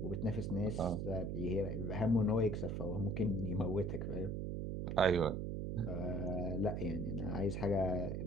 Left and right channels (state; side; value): noise; right; hum, 2 dB below the sound